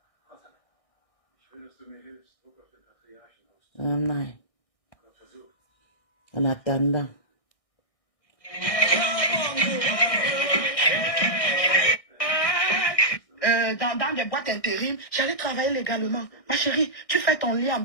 Oh non. En attendant. Dans des boîtes intérim, j'allais travailler légalement. Ma chérie, tu fais ton lit en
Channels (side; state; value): right; late; 1.6 ms